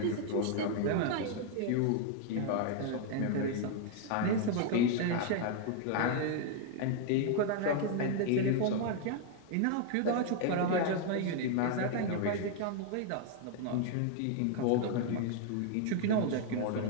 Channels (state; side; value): different; both; correlation 0.00